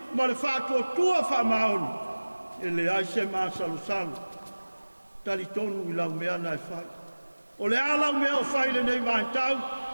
Ma le whātua whamaoni. E le ai se maa salu. Talitonu i lau mea na e whai. O le alau mea o whai le nei mai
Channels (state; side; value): inverted; both; correlation -1.00